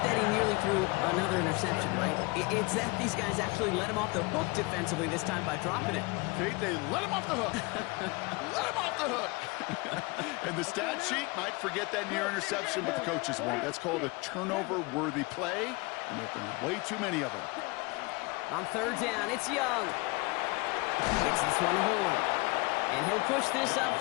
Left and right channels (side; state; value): right; quieter; 26.0 dB